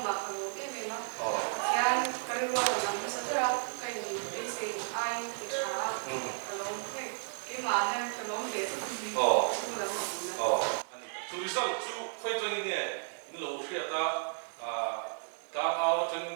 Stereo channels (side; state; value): left; silent; 55 dB below the other